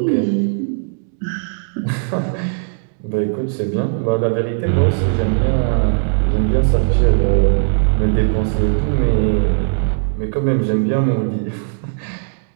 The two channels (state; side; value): silent; left; digital silence